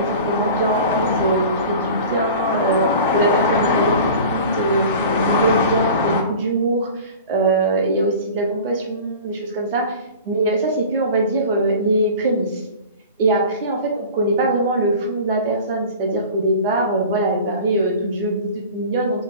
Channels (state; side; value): inverted; both; correlation -0.39